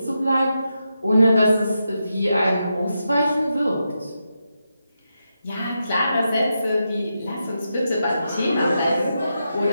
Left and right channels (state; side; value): inverted; both; correlation -0.86